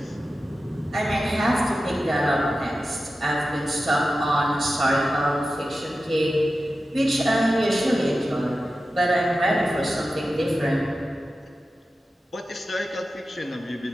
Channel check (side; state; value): both; normal; correlation 0.93